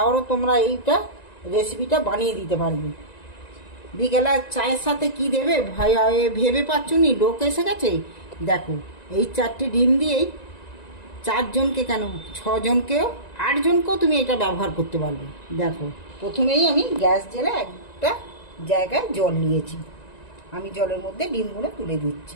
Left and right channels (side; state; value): right; late; 1.9 ms